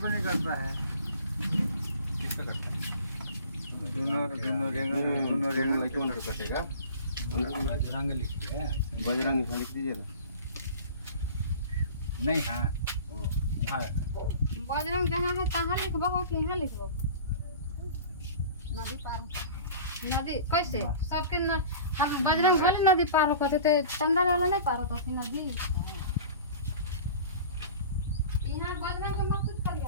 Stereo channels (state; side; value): inverted; both; correlation -0.40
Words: नहीं करता है। किससे कटता है? दोनों रेंग कौन सा कटेगा? बजरंग लिखिए। बजरंग लिख दीजिए ना। नहीं हाँ हाँ बजरंग जहाँ है तहाँ लिखबो कि यहाँ लिखबो? नदी पार नदी कैसे सबके न, हम बजरंग वाली नदी पार होते थे, चंदा वाला नहीं पार होता थी नदी। यहाँ बजरंग के मत कुछ